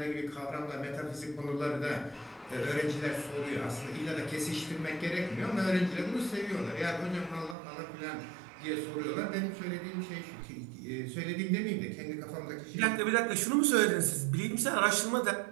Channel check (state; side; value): drops out; left; at 7.6 s